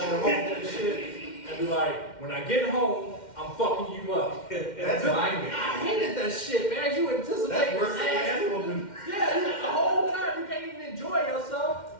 in the home and shit, and be like, "When I get home, I'm fucking you up." That's my game. I hated that shit, man. You anticipate That's this worse than ass. ass whooping. Yeah, the whole time you can't even enjoy yourself.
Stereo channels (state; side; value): late; right; 2.1 ms